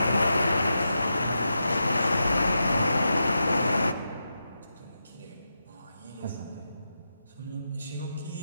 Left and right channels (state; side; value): inverted; both; correlation -0.88